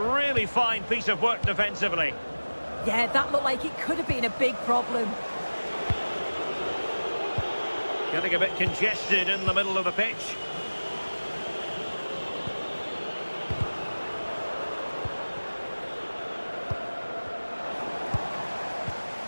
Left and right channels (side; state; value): both; inverted; correlation -1.00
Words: fine piece of work defensively. Yeah, that looked like it could have been a big problem. Getting a bit congested in the middle of the pitch.